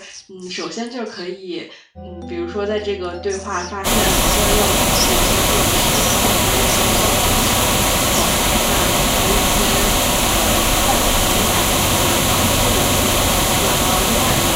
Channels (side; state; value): both; identical; correlation 1.00